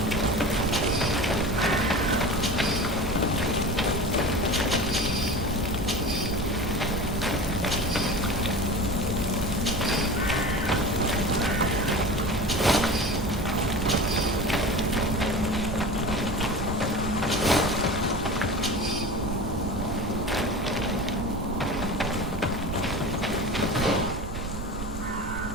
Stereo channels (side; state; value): right; noise; rumble, 7 dB below the sound